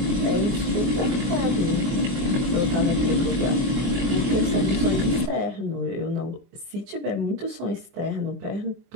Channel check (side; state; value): left; late; 24 ms